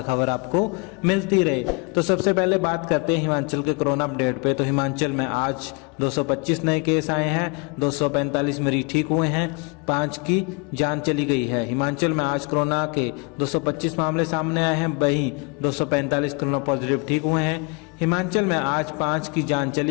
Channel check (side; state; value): right; quieter; 32.0 dB